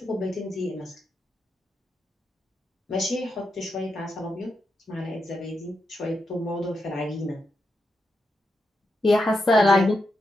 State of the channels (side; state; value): both; normal; correlation 0.85